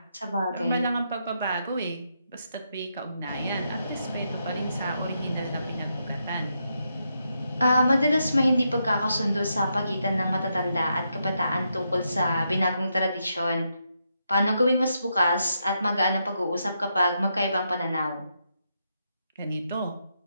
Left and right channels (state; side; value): inverted; both; correlation -0.82